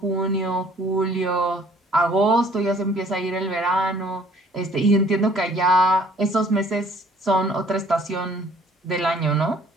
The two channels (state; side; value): normal; both; correlation 0.57